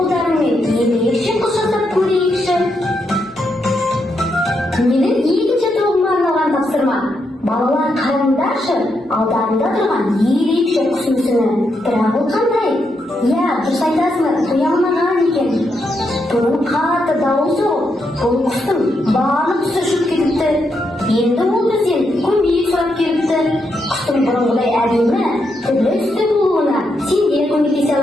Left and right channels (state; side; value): normal; both; correlation 0.81